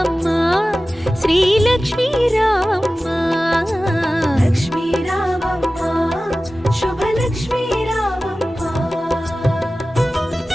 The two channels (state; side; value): normal; both; correlation 0.96